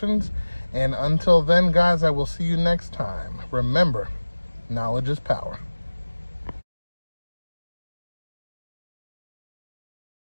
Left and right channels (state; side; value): inverted; both; correlation -1.00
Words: And until then, guys, I will see you next time. Remember, knowledge is power.